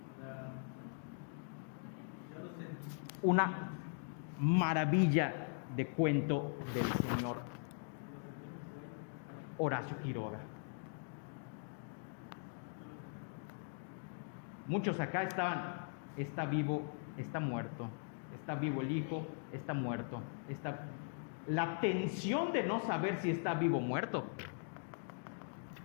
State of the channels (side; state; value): right; silent; digital silence